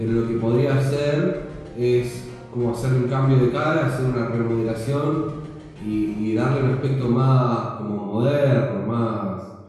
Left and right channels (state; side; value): identical; both; correlation 1.00